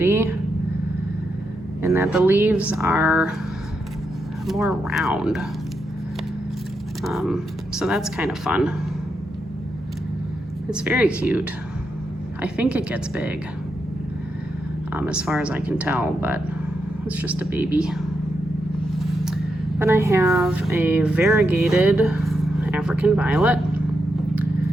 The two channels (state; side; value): normal; both; correlation 0.84